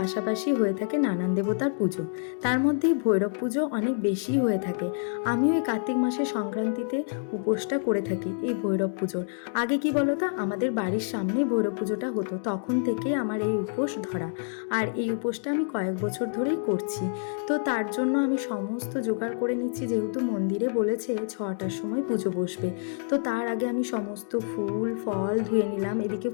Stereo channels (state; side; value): silent; right; digital silence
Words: হয়ে থাকে নানান দেবতার পুজো। তার মধ্যেই ভৈরব পুজো অনেক বেশি হয়ে থাকে। আমিও এই কার্তিক মাসের সংক্রান্তিতে উপোসটা করে থাকি এই ভৈরব পুজোর। আগে কি বলো তো, আমাদের বাড়ির সামনেই ভৈরব পুজোটা হতো, তখন থেকেই আমার এই উপোস ধরা। আর এই উপোসটা আমি কয়েক বছর ধরেই করছি। তো তার জন্য আমি সমস্ত জোগাড় করে নিচ্ছি, যেহেতু মন্দিরে বলেছে 6টার সময় পুজো বসবে। তো তার আগে আমি সমস্ত ফুল ফল ধুয়ে নিলাম, এদিকে